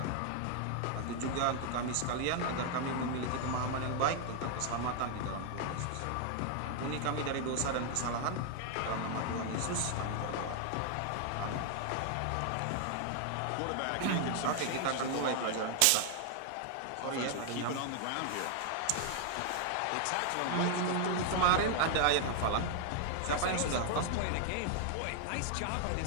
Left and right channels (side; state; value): both; different; correlation 0.00